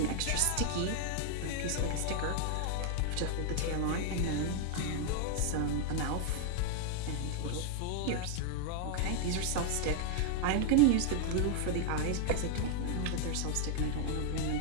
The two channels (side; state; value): both; different; correlation 0.00